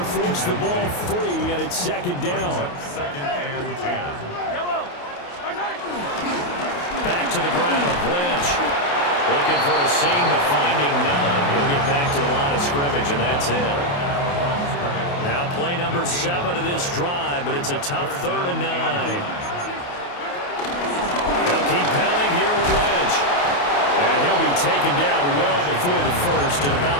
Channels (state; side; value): late; right; 28 ms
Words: forced the ball free, and it's 2nd down. 2nd and 10. Back to the ground, Lynch. Looking for a seam, but finding none. He'll get back to the line of scrimmage, and that's it. Now play number 7 of this drive, but it's a tough 3rd and 9. They'll keep pounding here with Lynch. And he'll be taken down well before the 1st at about